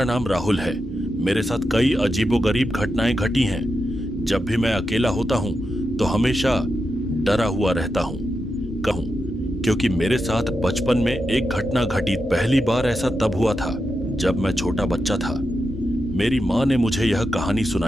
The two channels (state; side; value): normal; both; correlation 0.88